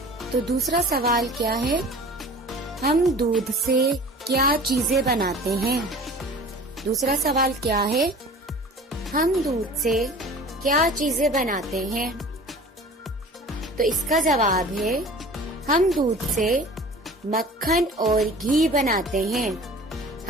तो दूसरा सवाल क्या है? हम दूध से क्या चीजें बनाते हैं? दूसरा सवाल क्या है? हम दूध से क्या चीजें बनाते हैं? तो इसका जवाब है हम दूध से मक्खन और घी बनाते हैं।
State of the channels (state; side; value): normal; both; correlation 0.42